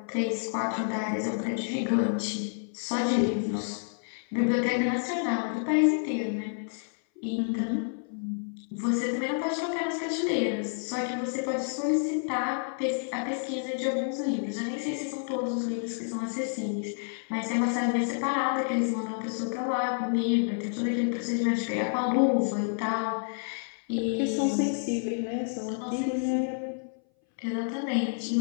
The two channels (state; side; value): silent; right; 58 dB below the other